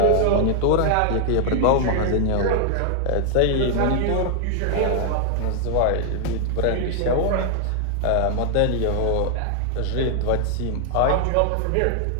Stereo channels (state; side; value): different; both; correlation 0.00